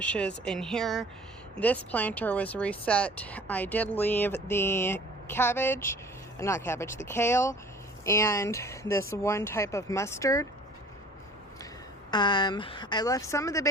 in here. This planter was reset. I did leave the the kale, and this one type of mustard. I left some of the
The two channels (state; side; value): normal; both; correlation 0.48